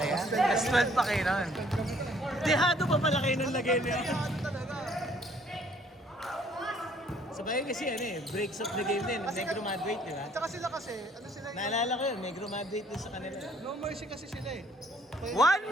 Plus 12 pa kayo nun. Dehado pa pala kayo nung lagay niya. Ano talaga? Sabay kasi ano eh, breaks of the game din. Negro Madrid, di ba? Tsaka sila kasi, ano sila yung... Naalala ko yun, Negro Madrid din sa kanila. No mercy kasi sila eh. Kaya 1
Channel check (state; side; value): normal; both; correlation 0.61